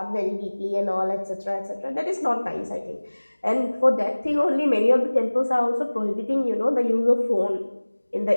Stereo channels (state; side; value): inverted; both; correlation -1.00